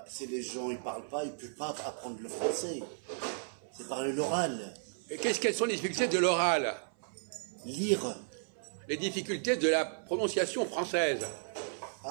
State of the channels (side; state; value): left; silent; 55 dB below the other